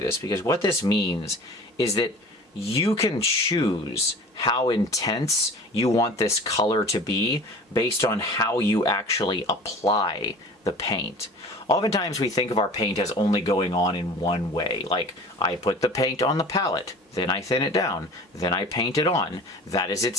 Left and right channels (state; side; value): normal; both; correlation 0.41